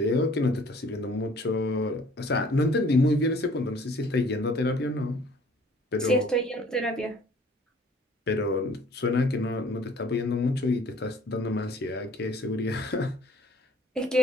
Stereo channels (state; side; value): normal; both; correlation 0.54